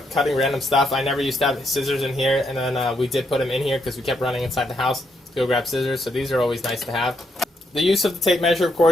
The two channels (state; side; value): normal; both; correlation 0.77